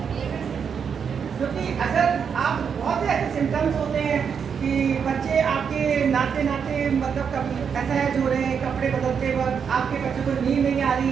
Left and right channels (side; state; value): left; quieter; 6.8 dB